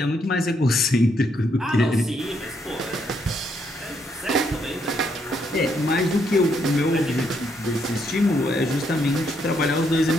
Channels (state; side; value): normal; both; correlation 0.74